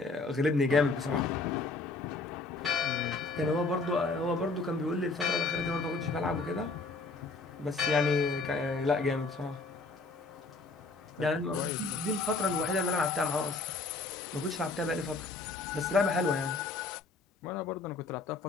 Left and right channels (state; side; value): quieter; right; 3.6 dB